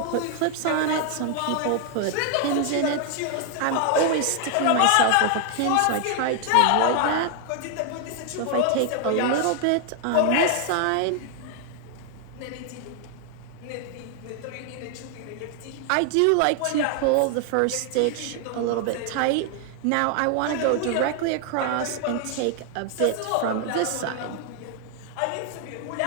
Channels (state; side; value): different; both; correlation 0.00